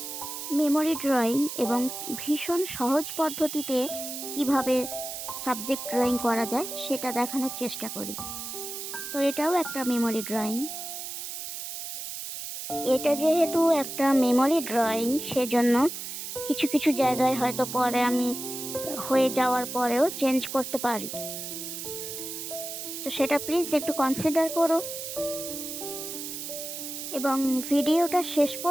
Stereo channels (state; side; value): noise; right; hiss, 7 dB below the sound